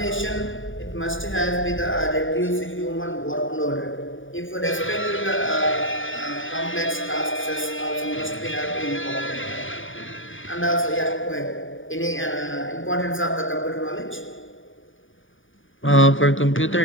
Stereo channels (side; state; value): right; late; 0.57 ms